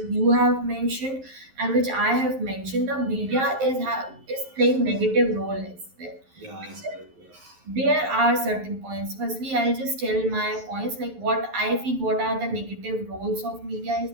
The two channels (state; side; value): late; left; 11 ms